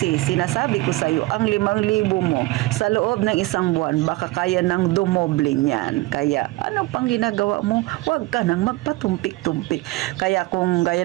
sinasabi ko sa iyo, ang 5,000 mo sa loob ng isang buwan, baka kaya nang dumoble niyan. Kaya, ano pang ginagawa mo? Huwag ka nang magpatumpik-tumpik. Kaya kung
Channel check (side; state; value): left; quieter; 20.0 dB